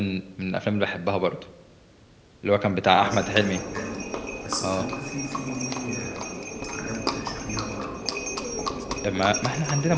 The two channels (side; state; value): both; identical; correlation 1.00